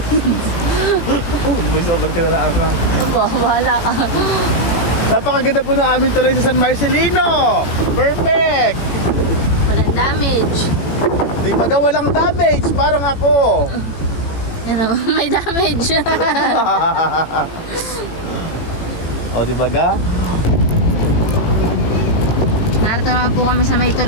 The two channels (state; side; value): late; right; 18 ms